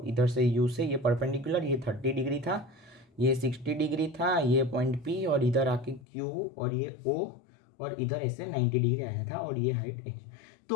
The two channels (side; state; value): right; drops out; at 6.1 s